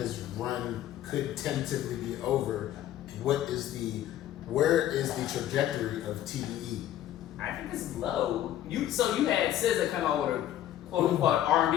run could tentatively be over, where is the trajectory of TDE? I think it's low. You had SZA come out with a quote unquote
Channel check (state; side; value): quieter; right; 12.3 dB